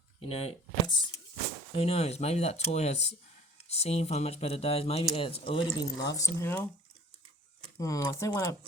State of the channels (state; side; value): normal; both; correlation 0.49